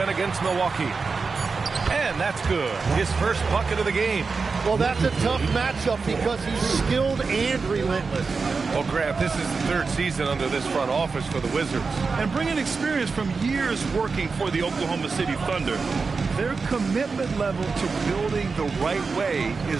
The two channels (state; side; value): quieter; left; 4.6 dB